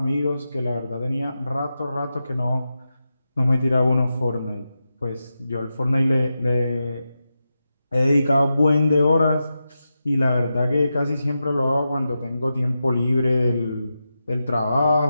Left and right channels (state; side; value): inverted; both; correlation -0.90